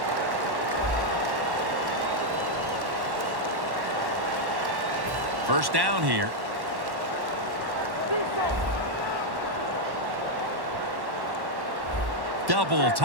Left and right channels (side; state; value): left; late; 1.1 ms